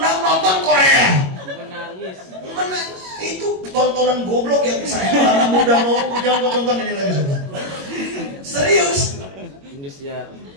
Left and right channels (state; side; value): late; left; 21 ms